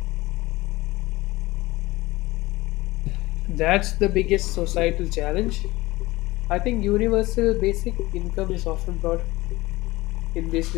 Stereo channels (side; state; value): right; quieter; 19.8 dB